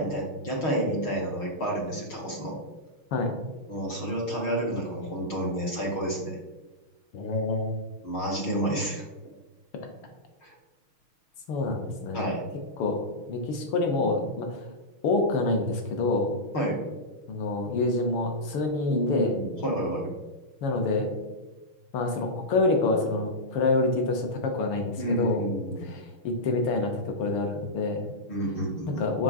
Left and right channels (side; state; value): right; late; 6.4 ms